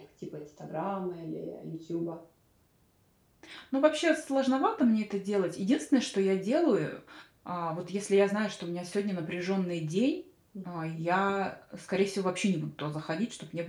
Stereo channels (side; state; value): both; identical; correlation 1.00